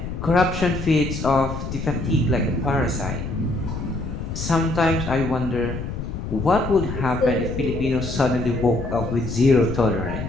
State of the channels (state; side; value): noise; left; rumble, 6 dB below the sound